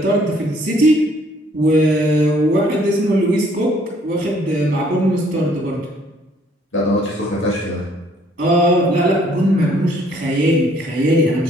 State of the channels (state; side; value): normal; both; correlation 0.62